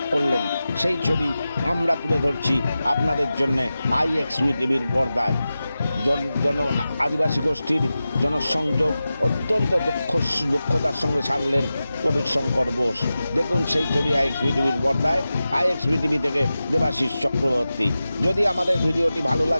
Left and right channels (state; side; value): inverted; both; correlation -0.94